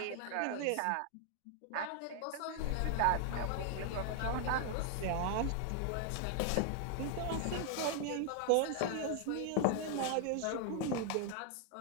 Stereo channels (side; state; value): both; different; correlation 0.00